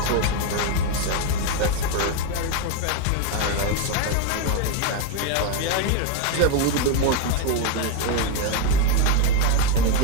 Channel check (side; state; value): both; different; correlation 0.02